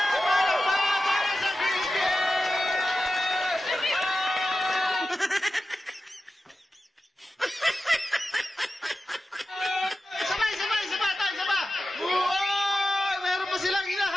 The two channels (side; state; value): both; normal; correlation 0.93